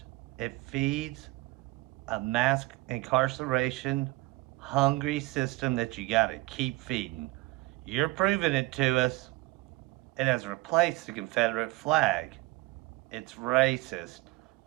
It feeds a mass incarceration, hungry system that you got to keep feeding. You're proving it to us. It has replaced the Confederate flag. It's racist.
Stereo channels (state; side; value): quieter; left; 21.2 dB